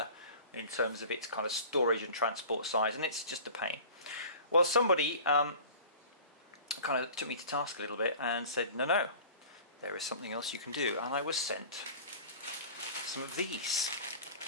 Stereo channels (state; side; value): inverted; both; correlation -0.40